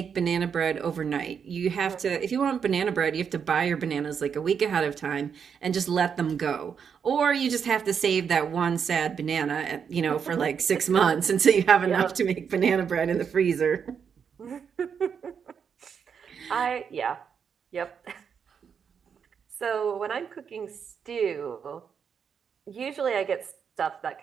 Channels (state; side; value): quieter; left; 7.0 dB